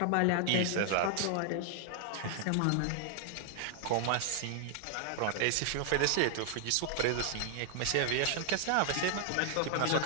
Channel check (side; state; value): both; different; correlation 0.00